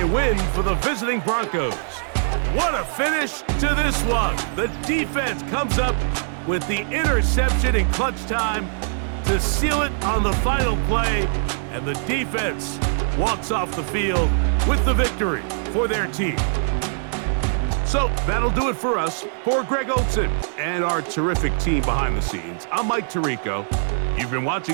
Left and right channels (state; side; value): silent; left; digital silence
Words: win for the visiting Broncos. What a finish to this one. The defense comes up with the interception in clutch time to seal it on the final play, and the defense walks off the field with the victory for their team. So that'll do it for us. For Greg Olson and our terrific team behind the scenes, I'm Mike Tirico. You've been